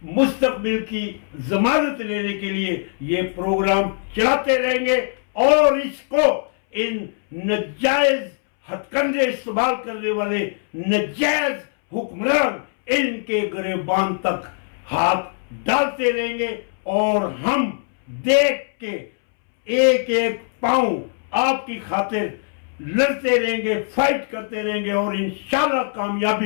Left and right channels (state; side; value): silent; right; 65 dB below the other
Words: مستقبل کی ضمانت لینے کے لیے یہ پروگرام چلاتے رہیں گے, اور اس کو ان ناجائز ہتھ کنڈے استعمال کرنے والے ناجائز حکمران ان کے گریبان تک ہاتھ ڈالتے رہیں گے. اور ہم دیکھ کے ایک ایک پاؤں آپ کی خاطر لڑتے رہیں گے, فائٹ کرتے رہیں گے, اور انشاءاللہ